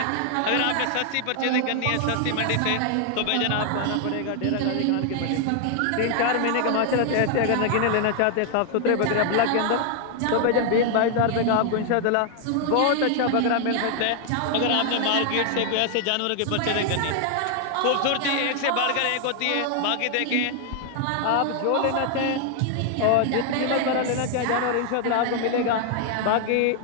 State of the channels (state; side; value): different; both; correlation 0.00